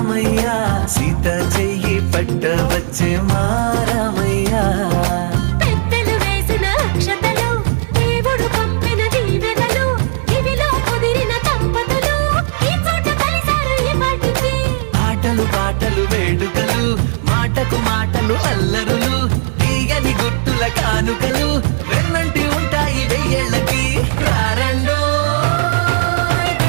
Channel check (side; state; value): left; silent; 69 dB below the other